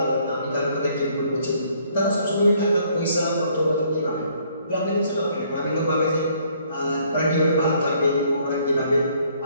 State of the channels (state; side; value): inverted; both; correlation -0.64